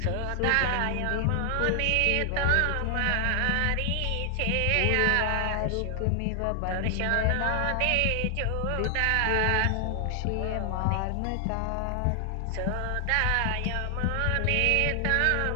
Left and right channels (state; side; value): different; both; correlation 0.00